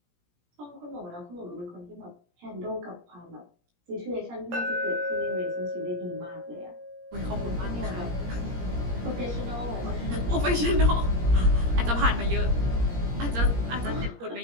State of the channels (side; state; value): left; late; 17 ms